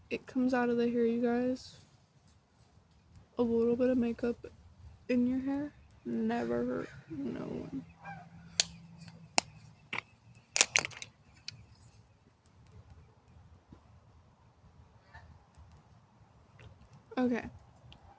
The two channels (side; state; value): both; identical; correlation 1.00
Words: it comes out of the hair, you guys. A little bit of makeup in your hair never hurt no one. Okay.